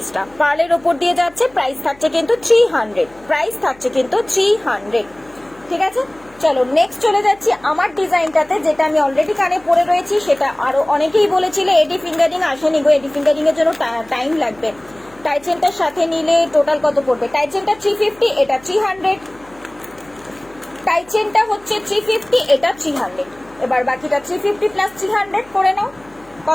পার্লের ওপর দিয়ে যাচ্ছে, প্রাইস থাকছে কিন্তু 300, প্রাইস থাকছে কিন্তু 300, ঠিক আছে। চলো নেক্সট চলে যাচ্ছি আমার ডিজাইনটাতে, যেটা আমি অলরেডি কানে পরে রয়েছি, সেটা আরো অনেকেই বলেছিলে এডি ফিঙ্গারিং আসেনি গো, এডি ফিঙ্গারিং এর জন্য টাইম লাগবে। টাইচেনটার সাথে নিলে টোটাল কত পড়বে? টাইচেনটা 350, এটা 300, টাইচেনটা হচ্ছে 350, এটা 300, এবার বাকিটা 350 প্লাস 300 করে নাও,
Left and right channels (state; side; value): noise; left; hum, 27 dB below the sound